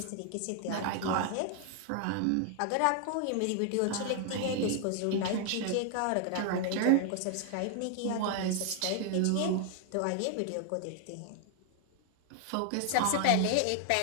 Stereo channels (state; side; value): different; both; correlation 0.00